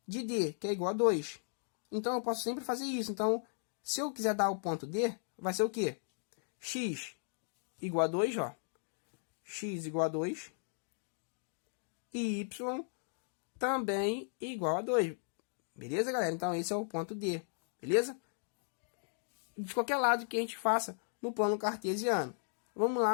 de D, que é igual a 2. Então eu posso sempre fazer isso. Então, se eu quiser dar o ponto D, vai ser o quê? X igual a 2, ó. X igual a 2. E Y também igual a 2. Beleza, galera? Então esse é o ponto D. Beleza? De qualquer lado que a gente faça no plano cartesiano. Vamos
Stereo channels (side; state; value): right; silent; digital silence